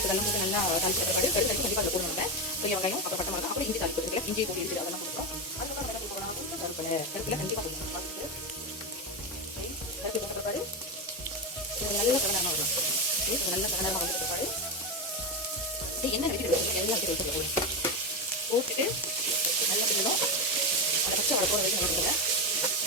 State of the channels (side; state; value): both; normal; correlation 0.13